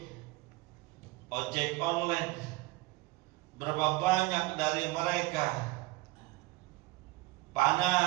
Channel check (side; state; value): left; quieter; 21.5 dB